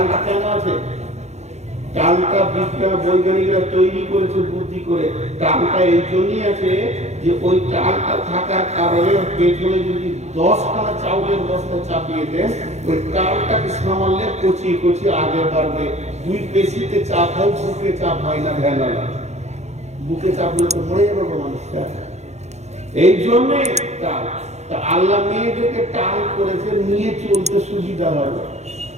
কেন আছে? টালটা বিজ্ঞান বৈজ্ঞানিকরা তৈরি করেছে বুদ্ধি করে। টালটা এই জন্যই আছে যে ওই টালটা থাকার কারণে পেছনে যদি 10খানা চাউলের বস্তা চাপিয়ে দেন, ওই টালটাকে সামালে কচিয়ে কচিয়ে আগে বাড়বে। দুই পেশিতে চাপ হয়, বুকে চাপ হয় না। ভ্যানালা বুকে চাপলে তো মরে যাবে মানুষটা। এই জন্যে টাল। তা আল্লাহ মেয়েদেরকে টাল করেছে নিয়ে চলতে সুবিধা হবে।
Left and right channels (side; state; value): left; late; 0.32 ms